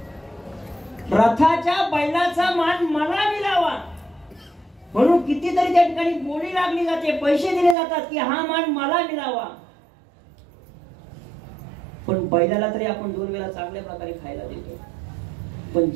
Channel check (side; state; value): left; drops out; at 7.8 s